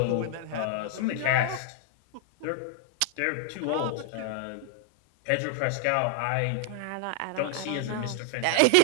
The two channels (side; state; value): both; different; correlation -0.01